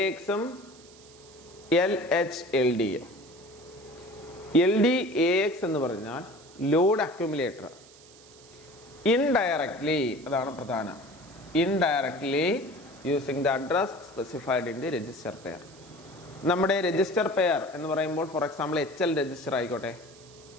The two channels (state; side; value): noise; right; hiss, 23 dB below the sound